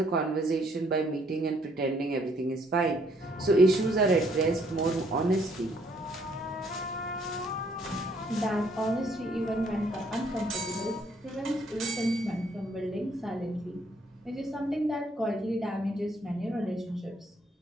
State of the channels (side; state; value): both; normal; correlation 0.66